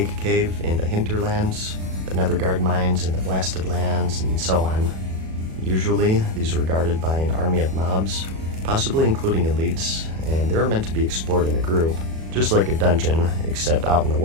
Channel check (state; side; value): late; left; 37 ms